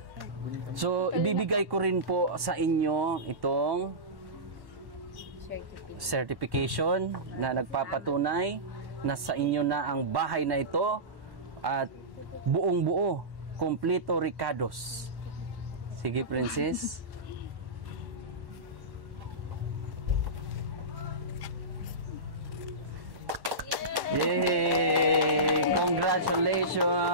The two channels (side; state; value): left; late; 1.1 ms